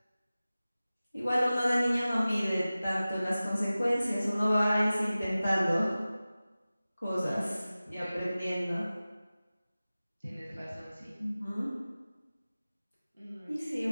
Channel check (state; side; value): inverted; both; correlation -0.97